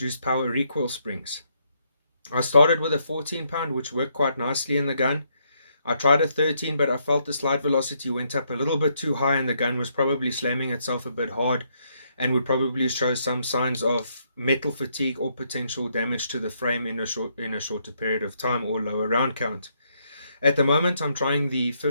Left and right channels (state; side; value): inverted; both; correlation -0.75